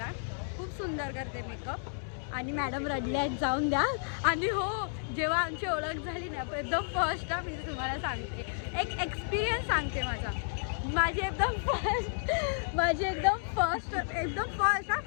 खूप सुंदर करते मेकअप. आणि मॅडम रडल्या जाऊन द्या. आणि हो जेव्हा आमची ओळख झाली ना एकदम फर्स्ट मी तुम्हाला सांगते एक एक्सपिरियन्स सांगते माझी एकदम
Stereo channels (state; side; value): silent; right; digital silence